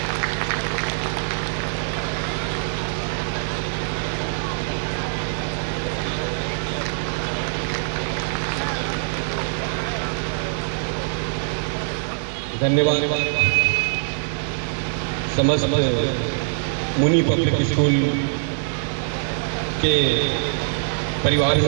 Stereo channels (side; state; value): left; silent; digital silence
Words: धन्यवाद समस्त मुनि public school के